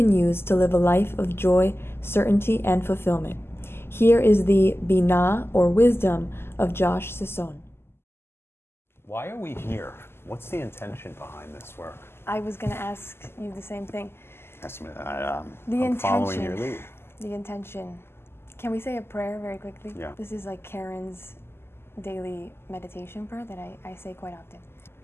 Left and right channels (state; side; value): late; right; 0.12 ms